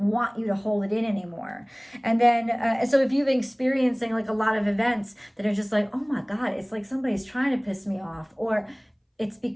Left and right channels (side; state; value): both; identical; correlation 1.00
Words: you to hold it in anymore. And then, so if you've been experiencing like a lot of events that are just like, oh my God, it's like somebody's trying to piss me off, or it's